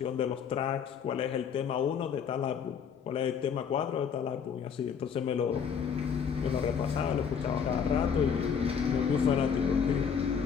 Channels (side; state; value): right; quieter; 7.0 dB